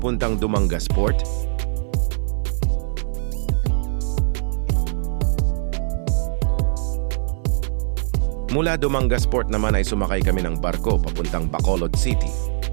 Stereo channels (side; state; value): left; silent; digital silence